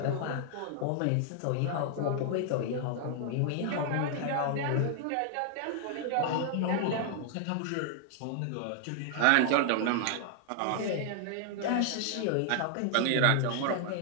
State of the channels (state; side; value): different; both; correlation 0.00